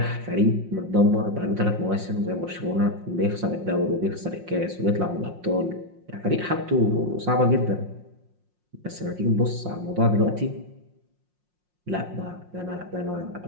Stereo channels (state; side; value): late; left; 5.6 ms